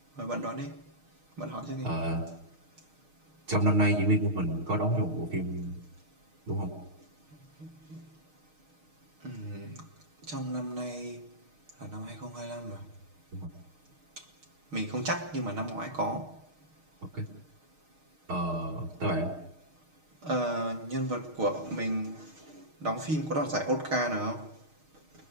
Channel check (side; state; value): left; late; 6.5 ms